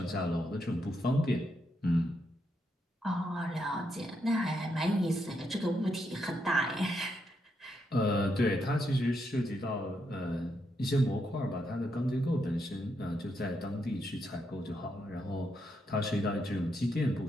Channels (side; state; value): both; normal; correlation 0.80